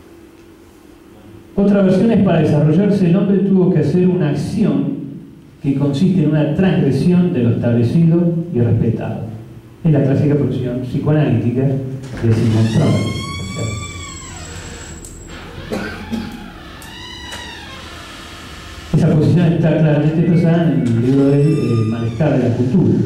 Otra versión es: para desarrollarse el hombre tuvo que hacer una acción que consiste en una transgresión de lo establecido y respetado. Es la clásica posición psicoanalítica de Sigmund Freud. Esa posición está claramente expresada en el libro del malestar de la cultura,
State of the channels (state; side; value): identical; both; correlation 1.00